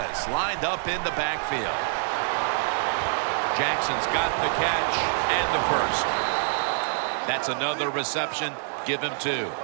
lined up in the backfield. Jackson's got the catch and the first. That's another reception. Give him 2.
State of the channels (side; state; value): left; silent; 61 dB below the other